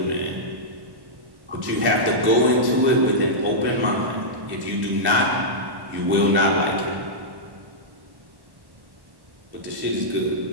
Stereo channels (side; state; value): left; late; 1.1 ms